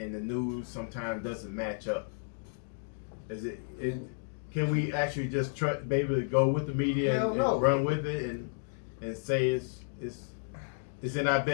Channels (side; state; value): right; silent; digital silence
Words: the news sometimes doesn't match up. Can we actually just be able to go with the media and run with it and say it's in our